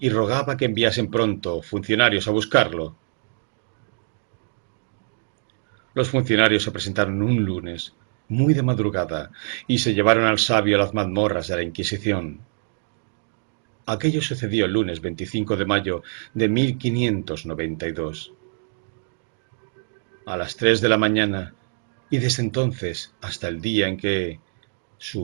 rogaba que enviasen pronto funcionarios a buscarlo. Los funcionarios se presentaron un lunes, muy de madrugada, y se llevaron al sabio a las mazmorras de la Inquisición. Aquello sucedió el lunes 25 de mayo de 1592. A las 3 de la mañana, y desde entonces hasta el día en que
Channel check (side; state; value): left; silent; digital silence